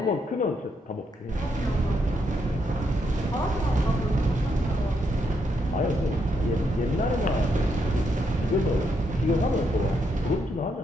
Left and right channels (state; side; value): normal; both; correlation 0.78